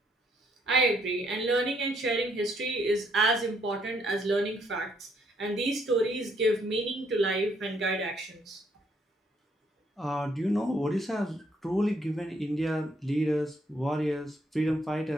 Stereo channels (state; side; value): normal; both; correlation 0.70